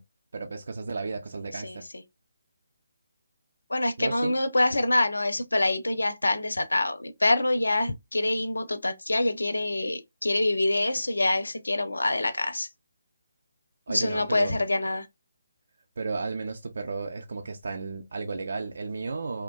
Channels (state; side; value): inverted; both; correlation -0.95